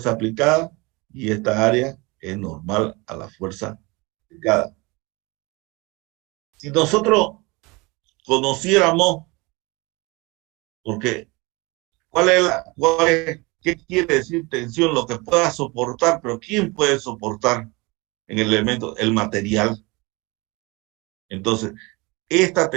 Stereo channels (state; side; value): quieter; left; 25.4 dB